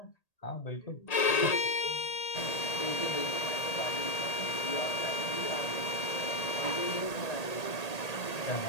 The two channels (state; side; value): late; right; 1.8 ms